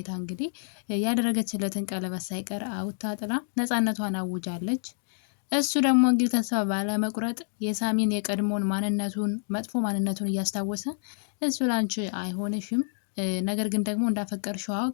እንግዲህ ያደረገችለትን ቀለበት ሳይቀር አውጥታ ጥላ ነፃነቷን አውጃለች። እሱ ደግሞ እንግዲህ ተስፋ ባለመቁረጥ የሳሚን የቀድሞን ማንነቱን መጥፎ ማንነቱን እያስታወሰ እሱ ላንቺ አይሆንሽም፣ ነገር ግን ደግሞ እንዳፈቀርሽው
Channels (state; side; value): silent; right; digital silence